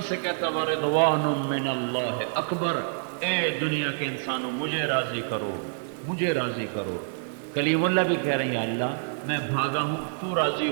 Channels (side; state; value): left; silent; digital silence